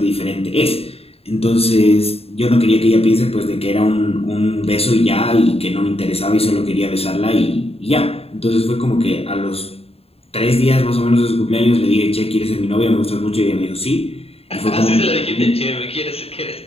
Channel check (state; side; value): late; right; 0.29 ms